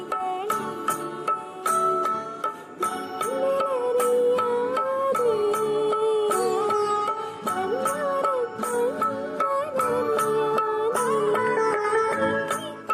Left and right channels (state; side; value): identical; both; correlation 1.00